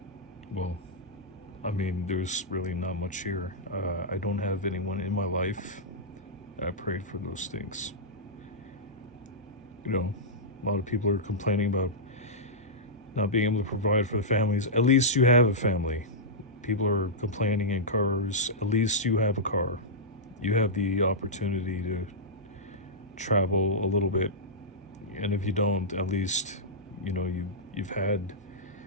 well, I mean, there's really not much here. I don't have anyone in my life. I prayed for those things. A lot of people are complaining about not being able to provide for the families. At least you have a family. People are complaining in cars. At least you have a car. You have the opportunity to travel a little bit. And if you don't, at least, you've had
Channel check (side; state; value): both; normal; correlation -0.12